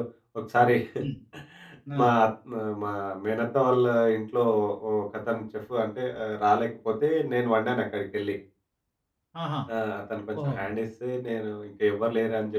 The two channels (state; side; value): identical; both; correlation 1.00